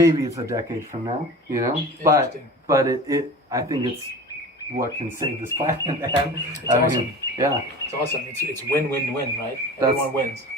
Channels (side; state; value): both; normal; correlation 0.37